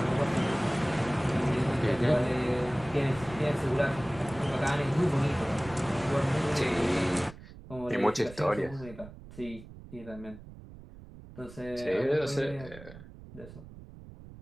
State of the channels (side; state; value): right; noise; rumble, 17 dB below the sound